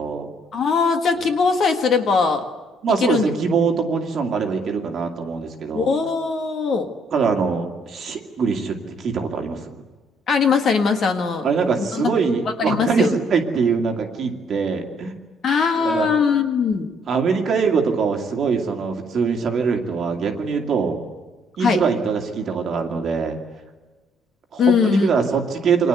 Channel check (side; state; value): both; normal; correlation 0.66